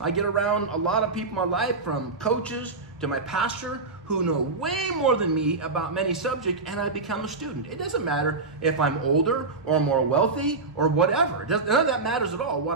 get around a lot of people in my life, from coaches to my pastor, who know way more than me about many subjects, and I become a student. It doesn't matter if I'm older or more wealthy or whatever. None of that matters at all.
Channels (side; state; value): left; quieter; 3.9 dB